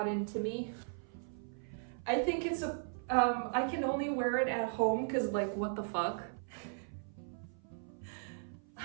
into me. I think it's I can only wear it at home because like, what the fuck?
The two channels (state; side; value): silent; left; 53 dB below the other